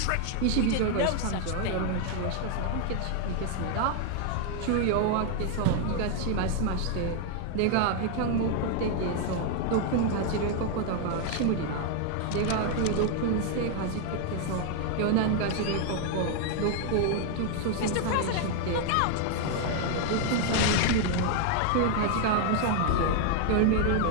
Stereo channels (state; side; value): different; both; correlation 0.00